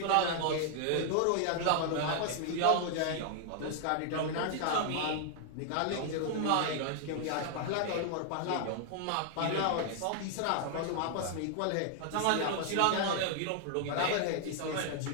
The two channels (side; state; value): both; different; correlation 0.00